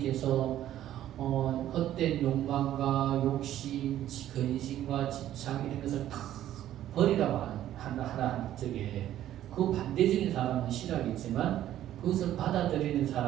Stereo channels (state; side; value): quieter; left; 12.4 dB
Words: 헛된 욕망과 욕심, 근심과 집착 이런 것을 다 버리라고 하라는 적에 그 반대적인 사람은 싫어하겠지만 그것을 받아들이는